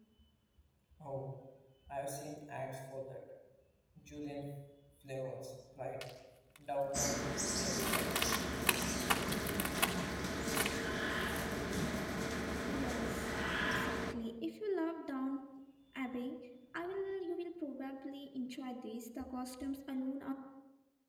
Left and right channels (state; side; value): identical; both; correlation 1.00